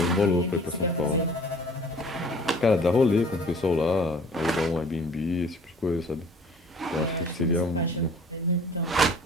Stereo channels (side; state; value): both; normal; correlation 0.51